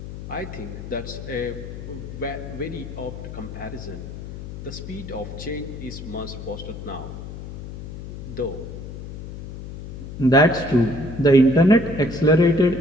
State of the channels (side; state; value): left; noise; hum, 10 dB below the sound